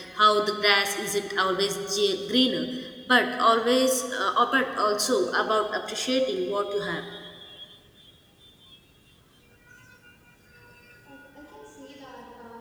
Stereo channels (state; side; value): identical; both; correlation 1.00